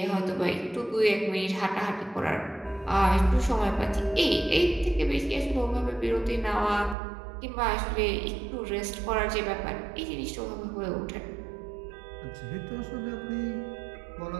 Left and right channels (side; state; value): left; drops out; at 7.0 s